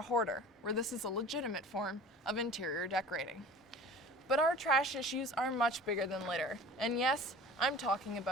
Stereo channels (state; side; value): normal; both; correlation 0.41